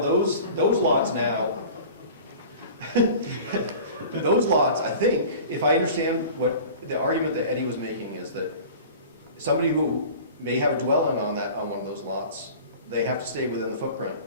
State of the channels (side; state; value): both; inverted; correlation -0.40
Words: lots now, those lots, I think, if I understand what the argument that Eddie was making is that somebody who may have a dwelling on one of those lots, they have to stay within the footprint